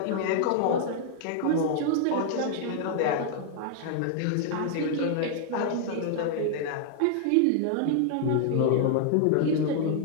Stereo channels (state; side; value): different; both; correlation 0.00